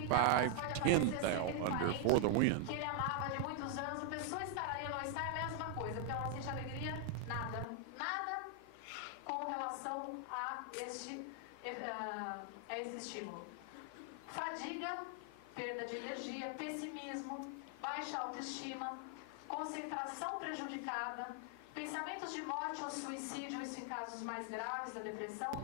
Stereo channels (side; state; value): both; different; correlation 0.00